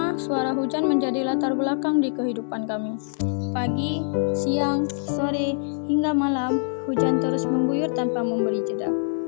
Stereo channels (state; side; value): silent; right; digital silence